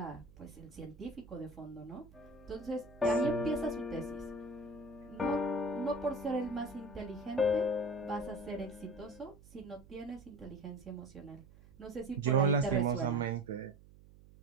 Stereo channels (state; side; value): noise; right; hum, 22 dB below the sound